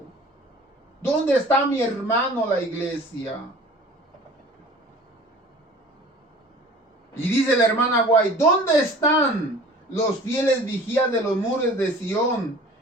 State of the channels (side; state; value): both; normal; correlation 0.45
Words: ¿Dónde está, mi hermano, la iglesia? Y dice la hermana Guay, ¿dónde están los fieles vigías de los muros de Sión,